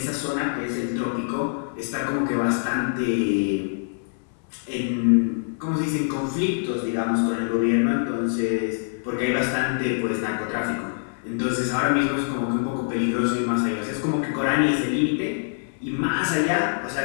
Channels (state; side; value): silent; right; digital silence